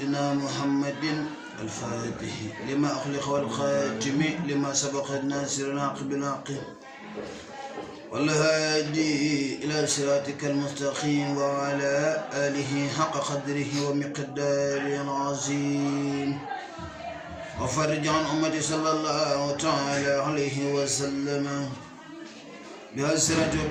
محمد الفاتح لما أخلق والخاتم لما سبق الناصر العاقب العاقب والهادي إلى صراطك المستقيم وعلى آله حق قدره ومقداره العظيم وفرج عن أمتي صلى الله تعالى عليه وسلم بأسرة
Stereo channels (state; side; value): identical; both; correlation 1.00